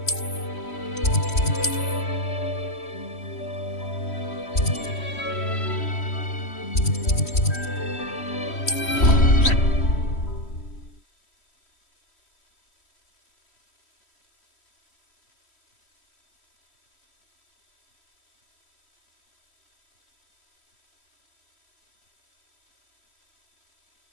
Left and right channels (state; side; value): late; right; 3.1 ms